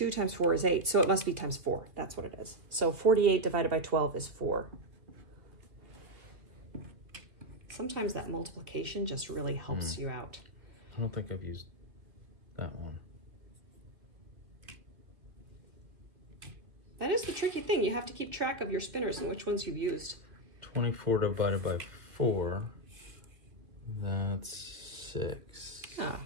times 4 is 8, so it must be times 4. That's what it is. So 48 divided by 12 is 4. Sometimes that multiplication just really helps you out. I don't think I've used that one. That is the tricky thing. You have to keep track of your spinners and which ones you've used. 24 divided by 4, that's 6. Oh,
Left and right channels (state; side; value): late; left; 2.1 ms